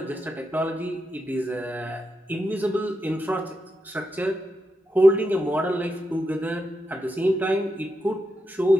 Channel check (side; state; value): both; normal; correlation 0.86